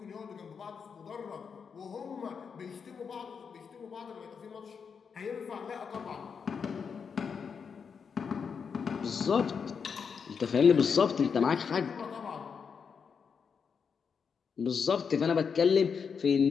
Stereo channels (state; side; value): quieter; right; 6.2 dB